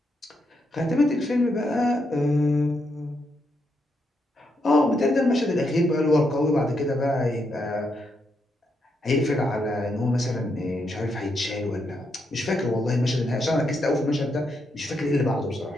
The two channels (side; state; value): both; normal; correlation 0.80